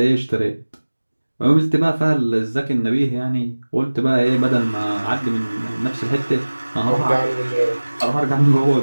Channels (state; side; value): inverted; both; correlation -1.00